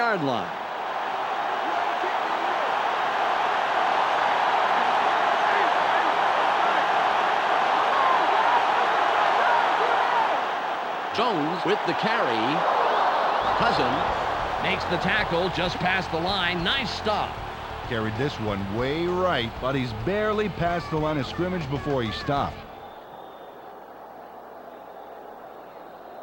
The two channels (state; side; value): identical; both; correlation 1.00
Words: line. Jones with the carry. Cousin makes the tackle just past the line. Nice stop. Carried this one way right, but he's barely past the line of scrimmage before he stopped.